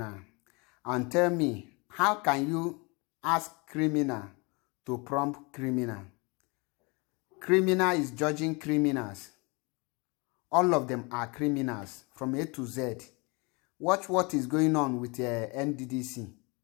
and tell me, how can you ask criminal to prompt criminal? Criminal is judging criminals. All of them are criminals from A to Z. Watch what is going on with NDDC.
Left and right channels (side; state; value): right; quieter; 29.0 dB